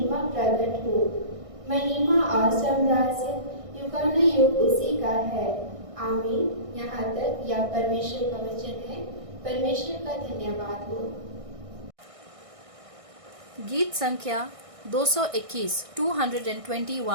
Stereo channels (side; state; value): left; late; 1.6 ms